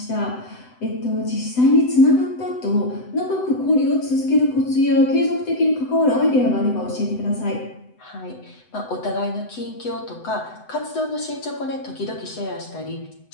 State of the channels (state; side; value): late; right; 7.9 ms